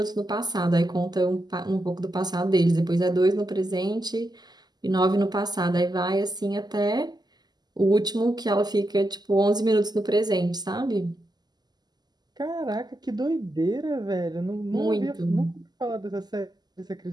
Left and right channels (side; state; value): left; late; 0.20 ms